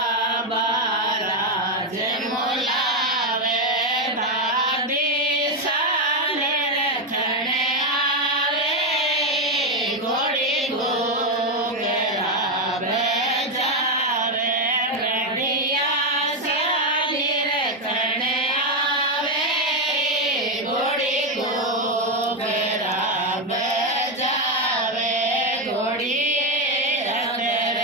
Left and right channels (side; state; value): both; normal; correlation 0.07